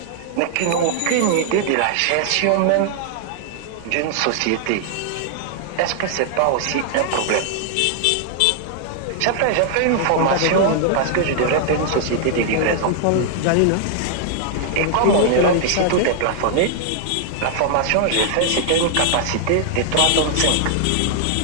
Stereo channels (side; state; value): both; different; correlation 0.00